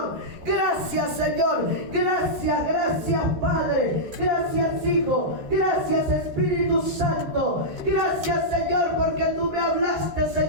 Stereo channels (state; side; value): late; left; 13 ms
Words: Gracias, Señor, gracias, Padre, gracias, Hijo, gracias, Espíritu Santo, gracias, Señor, porque tú me hablaste,